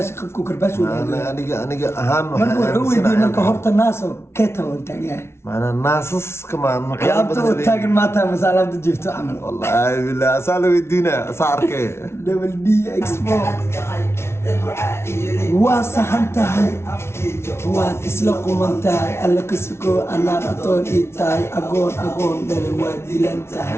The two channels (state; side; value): late; right; 0.12 ms